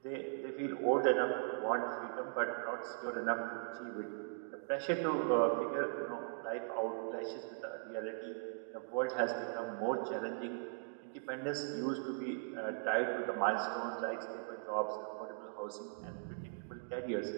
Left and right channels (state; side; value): silent; left; digital silence